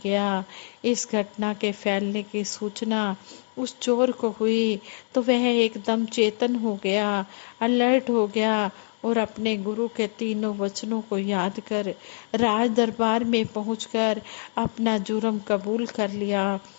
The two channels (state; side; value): silent; right; digital silence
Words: गया। इस घटना के फैलने की सूचना उस चोर को हुई तो वह एकदम चेतन हो गया, अलर्ट हो गया और अपने गुरु के 3 वचनों को याद कर राज दरबार में पहुंचकर अपना जुर्म कबूल कर लिया